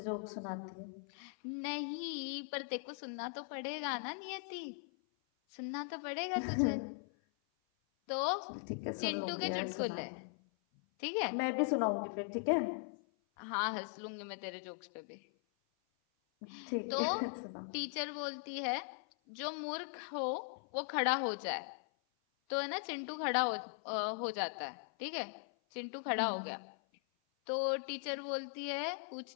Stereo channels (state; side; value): silent; right; 51 dB below the other